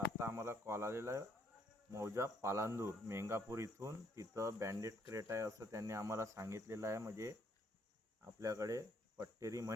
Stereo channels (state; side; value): normal; both; correlation 0.69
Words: आम्हाला कॉल आलेला आहे मौजा पालांदूर मेंगापूर इथून. तिथं बँडेड क्रेट आहे असं त्यांनी आम्हाला सांगितलेलं आहे. म्हणजे आपल्याकडे पट्टेरी